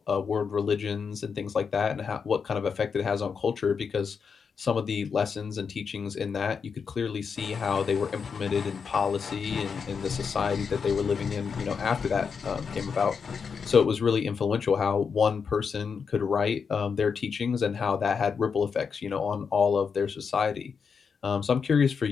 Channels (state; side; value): quieter; right; 6.0 dB